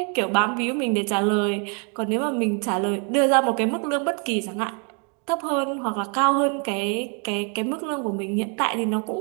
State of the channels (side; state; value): left; quieter; 37.8 dB